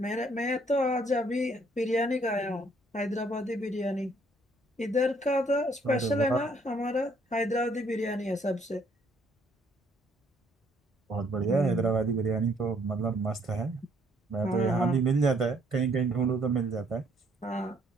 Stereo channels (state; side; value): normal; both; correlation 0.65